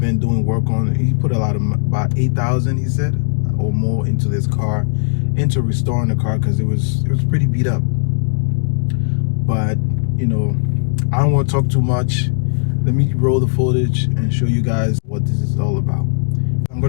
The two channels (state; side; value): silent; right; digital silence